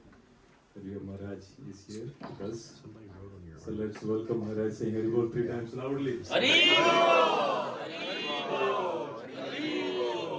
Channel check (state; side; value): identical; both; correlation 1.00